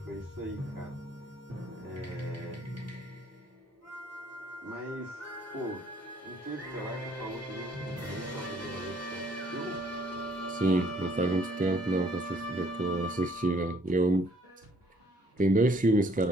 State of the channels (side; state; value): both; normal; correlation 0.63